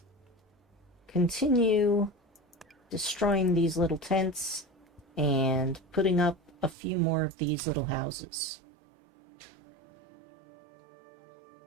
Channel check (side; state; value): left; drops out; at 6.8 s